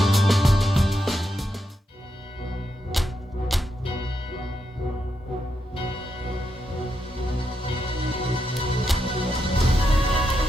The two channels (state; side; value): normal; both; correlation 0.83